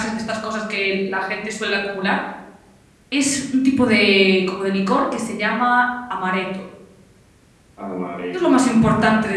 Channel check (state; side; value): identical; both; correlation 1.00